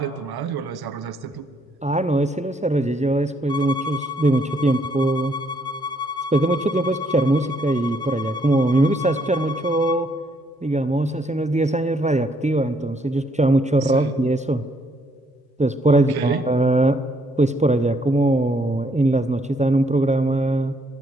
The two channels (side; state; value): both; normal; correlation 0.70